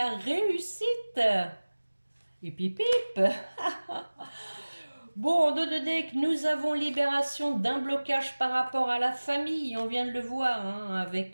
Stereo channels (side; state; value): both; inverted; correlation -1.00